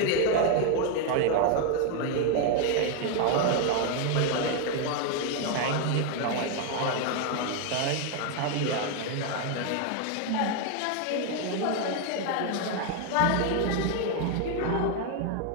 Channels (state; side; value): different; both; correlation 0.01